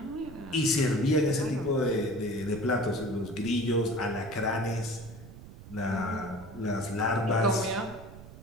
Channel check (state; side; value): noise; right; rumble, 16 dB below the sound